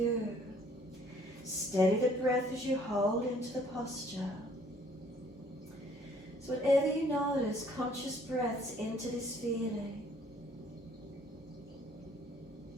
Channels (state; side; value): normal; both; correlation 0.60